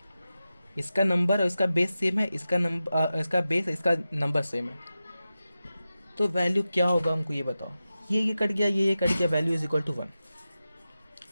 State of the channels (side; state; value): both; inverted; correlation -0.93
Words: इसका नंबर और इसका बेस सेम है, इसका नंबर इसका बेस इसका नंबर सेम है, तो वैल्यू क्या होगा हमको ये बताओ। ये कट गया, ये कट गया, value is equal to 1।